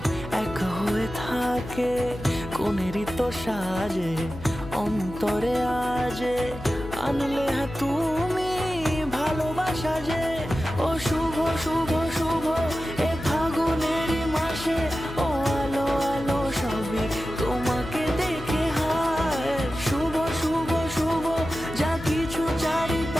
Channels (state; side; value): noise; left; hum, 13 dB below the sound